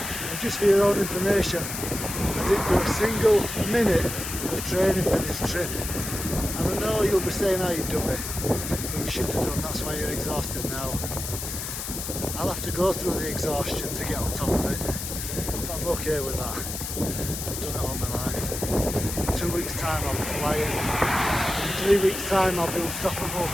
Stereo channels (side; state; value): left; noise; hiss, 6 dB below the sound